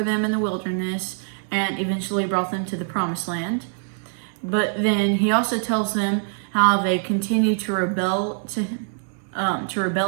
them in the wilderness, and eventually brought them to the promised land. But then he also tells them how they continue to rebel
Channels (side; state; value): left; silent; 60 dB below the other